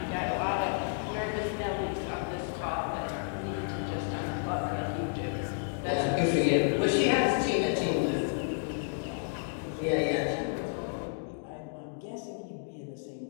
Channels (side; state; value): right; silent; digital silence